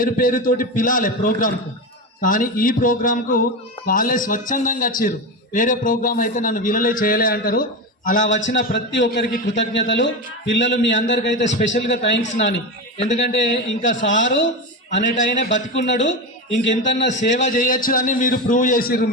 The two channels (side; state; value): both; normal; correlation 0.19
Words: పేరుతోటి పిలాలి ప్రోగ్రాంకు, కానీ ఈ ప్రోగ్రాంకు వాళ్ళే స్వచ్ఛందంగా వచ్చిర్రు. వేరే ప్రోగ్రాం అయితే నన్ను వీళ్ళలే చేయలే అంటారు. అలా వచ్చిన ప్రతి ఒక్కరికి కృతజ్ఞతలు. పిల్లలు మీ అందరికైతే స్పెషల్గా థ్యాంక్స్ నాని. ఎందుకంటే ఇంకా సారు అనేటైనా బతికున్నాడు, ఇంకెంతన్నా సేవ చేయొచ్చు అని మీరు ప్రూవ్ చేసిర్రు.